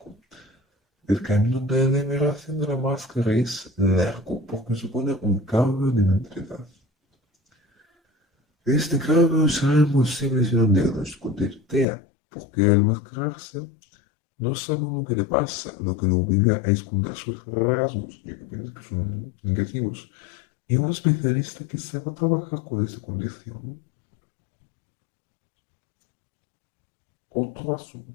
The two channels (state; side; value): drops out; right; at 11.9 s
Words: El camino de liberación de la máscara es largo porque supone un cambio de mentalidad. Este cambio será imposible sin un diagnóstico de TEA, porque al mascararse no sabe lo que le pasa, lo que lo obliga a esconder sus rasgos, ya que piensa que son negativos. Y un especialista que sepa trabajar con esta condición. Otro